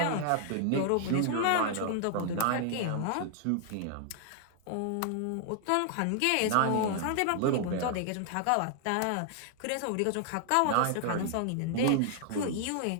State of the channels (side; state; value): both; different; correlation 0.00